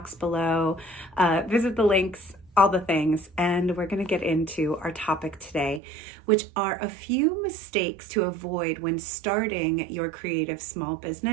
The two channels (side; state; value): left; drops out; at 5.8 s